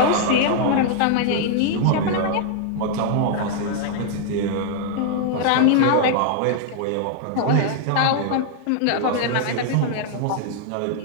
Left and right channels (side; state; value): both; different; correlation 0.00